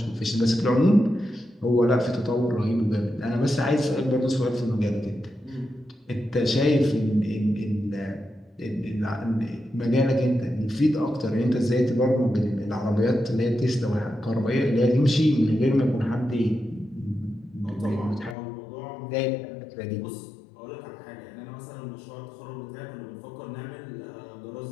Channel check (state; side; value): drops out; right; at 18.4 s